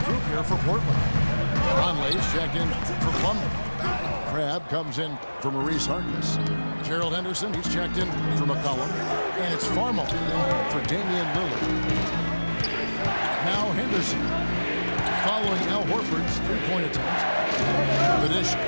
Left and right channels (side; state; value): both; inverted; correlation -1.00